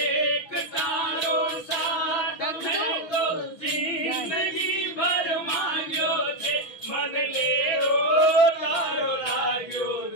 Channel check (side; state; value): right; late; 6.0 ms